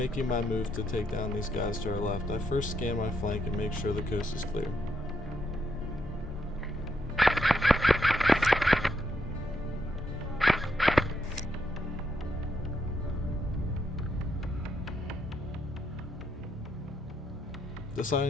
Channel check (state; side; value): normal; both; correlation 0.78